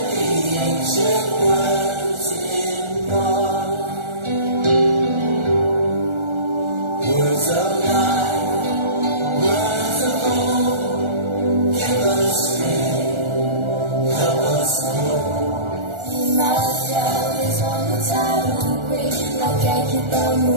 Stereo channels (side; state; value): left; late; 1.4 ms